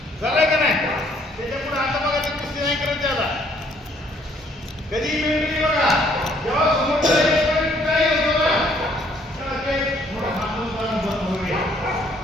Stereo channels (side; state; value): both; normal; correlation 0.64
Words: झालंय का नाही? त्याच्या पुढे आता बघा, ते कुस्ती नाही करत त्याला. कधी मेंटली बघा, जेव्हा समोरचा काही होतो ना, त्याला ते थोडं हातून बंद होईल.